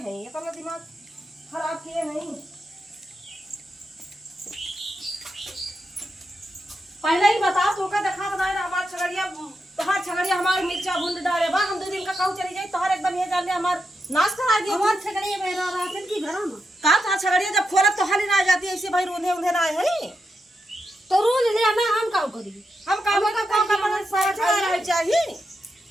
ये तो दिमाग खराब किए नहीं। पहले ही बता तो का देखा बनाए ना हमार छगड़िया हमार मिर्चा भूंड डाले बा हम 2 दिन का कहूँ चली जाए तोहर एकदम ये जान ले हमार नाश करा दिया हमार छगड़िया मेरा राशन की घर में का था छगड़िया जब खोलत तो हाली ना जाती ऐसे भाई रोंधे ना है तो रोज ले आना हम का करी हम काम का मन समाचार रह चाहिए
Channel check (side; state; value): both; normal; correlation 0.85